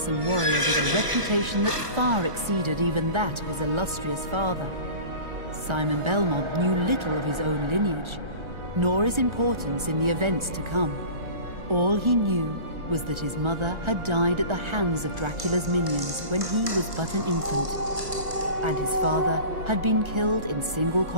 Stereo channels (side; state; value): left; late; 1.3 ms